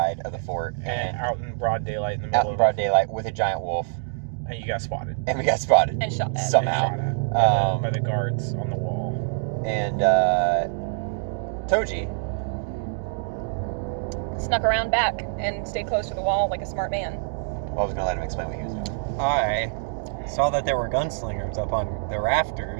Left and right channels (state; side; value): silent; left; digital silence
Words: of the fort, And and out in broad daylight in the middle out in of broad daylight with a giant wolf, and you got spotted. and we got spotted And shot at. somehow. Shot at by the guards on the wall. And Toji, Snuck around back and stayed close to the wall like a smart man. well, I was gonna let him explain what he was doing. I saw that there were gunslingers up on the